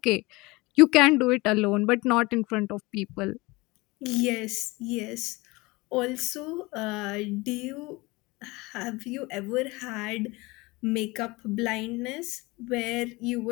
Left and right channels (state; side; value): quieter; right; 23.0 dB